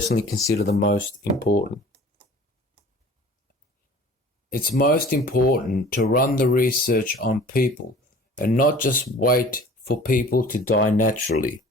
consider the most important? It's most important to run the research on people and not just wait for people to die naturally.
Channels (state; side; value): normal; both; correlation 0.45